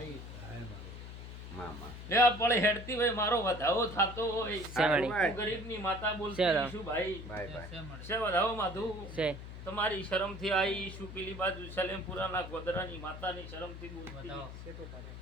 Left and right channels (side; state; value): left; noise; hum, 11 dB below the sound